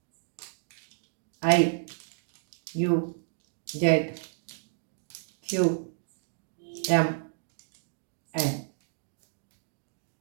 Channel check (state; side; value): silent; left; digital silence